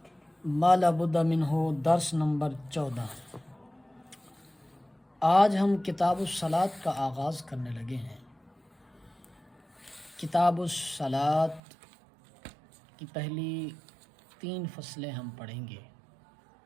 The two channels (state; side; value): drops out; left; at 11.6 s